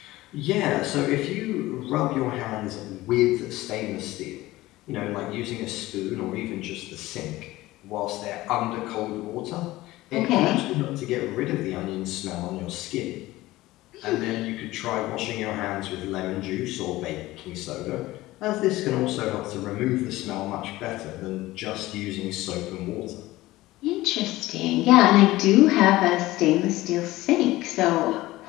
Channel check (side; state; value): right; quieter; 17.8 dB